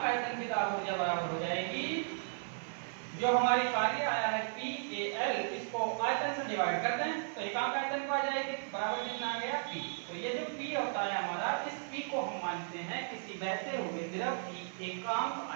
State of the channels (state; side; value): silent; left; 54 dB below the other